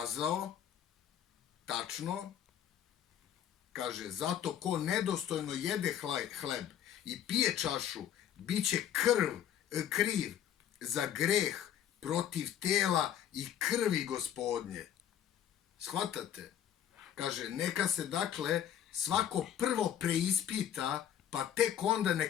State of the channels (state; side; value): quieter; right; 10.2 dB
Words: tačno, kaže, zato ko nedostojno jede hleb i pije čašu, bit će kriv za greh protiv tela i krvi Gospodnje. Shvatate? Kaže, neka se dakle svako prvo preispita, pa tek onda